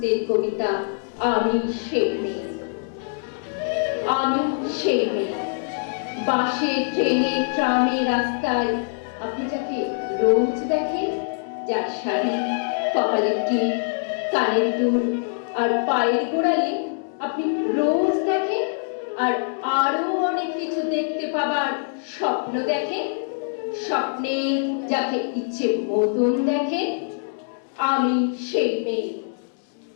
কবিতা আমি সেই মেয়ে। আমি সেই মেয়ে, বাসে, ট্রেনে, ট্রামে, রাস্তায় আপনি যাকে রোজ দেখেন, যার শাড়ি, কপালের টিপ, কানের দুল আর পায়ের গোড়ালে আপনি রোজ দেখেন, আর আরো অনেক কিছু দেখতে পাবার স্বপ্ন দেখেন, স্বপ্নে যাকে ইচ্ছে মতন দেখেন। আমি সেই মেয়ে।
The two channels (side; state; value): right; silent; digital silence